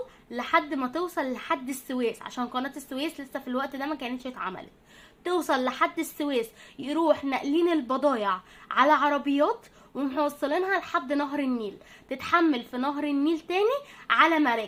لحد السويس، عشان قناة السويس لسه في الوقت ده ما كانتش اتعملت. توصل لحد السويس، يروح ناقلين البضايع على عربيات وموصلينها لحد نهر النيل، تتحمل في نهر النيل تاني على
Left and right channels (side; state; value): both; identical; correlation 1.00